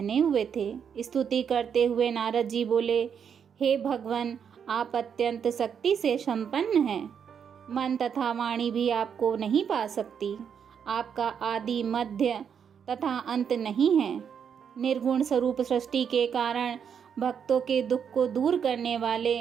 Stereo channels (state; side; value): quieter; left; 7.5 dB